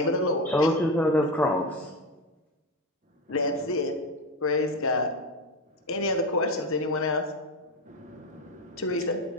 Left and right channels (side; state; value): both; normal; correlation 0.17